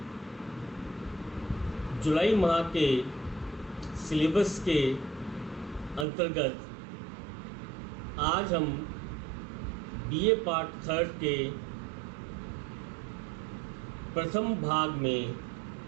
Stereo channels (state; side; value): drops out; left; at 6.1 s